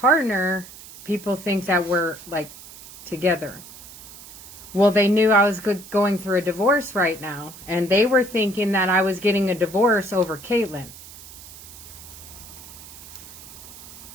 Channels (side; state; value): right; noise; hiss, 17 dB below the sound